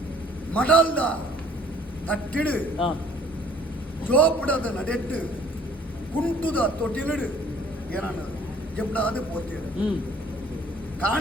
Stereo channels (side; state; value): both; normal; correlation 0.56